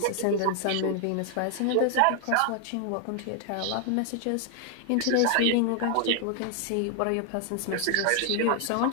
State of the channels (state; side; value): different; both; correlation 0.00